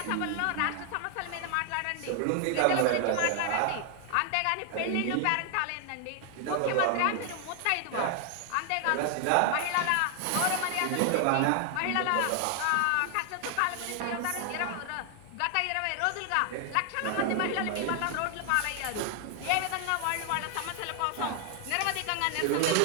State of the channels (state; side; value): different; both; correlation 0.00